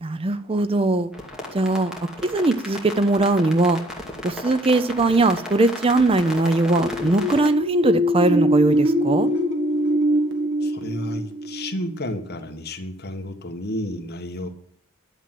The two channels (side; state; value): both; normal; correlation 0.62